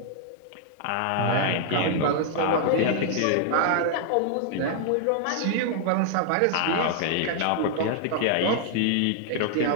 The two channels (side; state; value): both; different; correlation -0.01